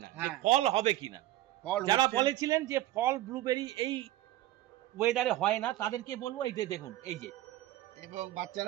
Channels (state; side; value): quieter; left; 15.2 dB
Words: না যে হ্যাঁ। ফল হবে কিনা। ফল যারা হচ্ছে। বলেছিলেন যে ফল ব্লুবেরি এই ওয়েদারে হয় না তাদেরকে বলবো এই যে দেখুন এই যে এবং